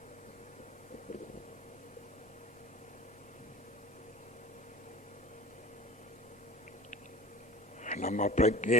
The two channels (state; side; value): normal; both; correlation 0.38